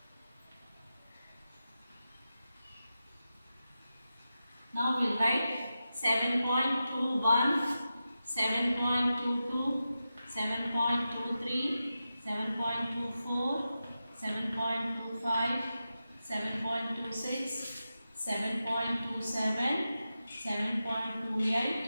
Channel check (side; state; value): both; inverted; correlation -0.91